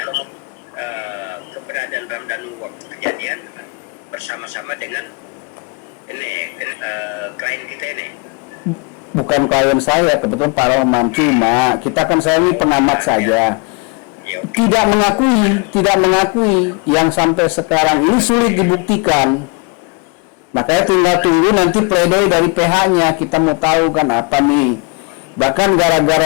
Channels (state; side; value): quieter; right; 32.6 dB